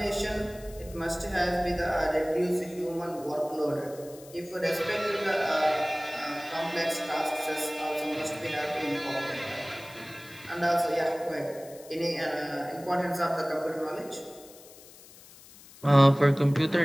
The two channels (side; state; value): left; noise; hiss, 21 dB below the sound